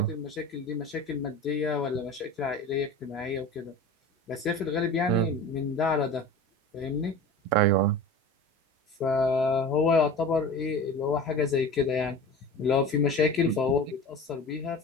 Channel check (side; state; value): both; normal; correlation 0.35